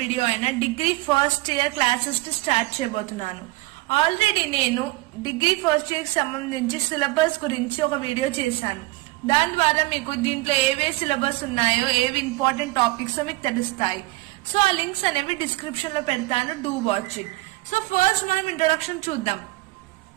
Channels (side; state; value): left; quieter; 21.3 dB